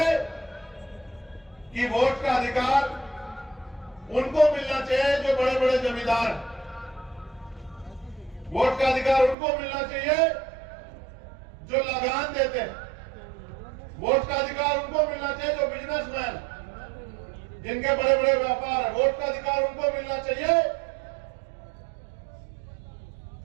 कि वोट का अधिकार उनको मिलना चाहिए जो बड़े बड़े जमींदार। वोट का अधिकार उनको मिलना चाहिए जो लगान देते हैं। वोट का अधिकार उनको मिलना चाहिए जो बिजनेसमैन, जिनके बड़े बड़े व्यापार है। वोट का अधिकार उनको मिलना चाहिए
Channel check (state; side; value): drops out; left; at 9.3 s